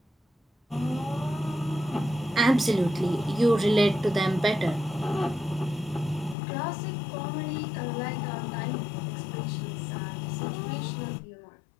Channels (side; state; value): right; drops out; at 6.4 s